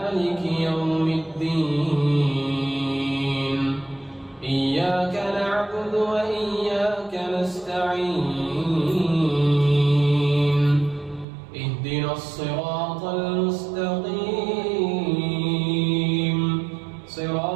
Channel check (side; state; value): left; drops out; at 11.2 s